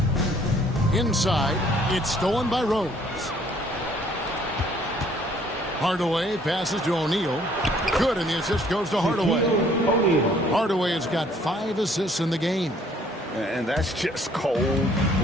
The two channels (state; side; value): normal; both; correlation 0.61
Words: Inside. It's stolen by Rose. Hardaway passes to O'Neal. Good, and the assist goes to Hardaway. Hardaway has got 5 assists in the game. And that's just